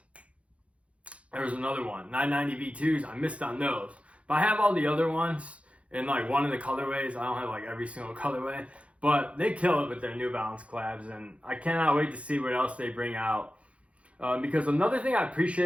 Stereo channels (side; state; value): left; late; 0.063 ms